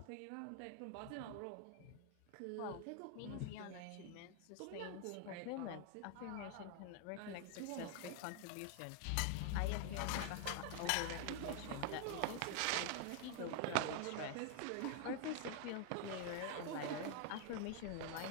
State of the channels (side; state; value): both; different; correlation 0.00